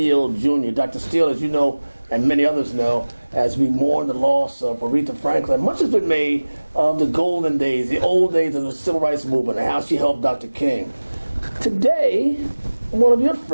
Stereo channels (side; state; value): both; inverted; correlation -1.00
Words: Jr. Dr. Steele, as you know, and many others know, as we mourn the loss of Aretha Franklin, much has been made of the golden days, the old days of the civil rights movement, and how she helped Dr. King. Today, one of your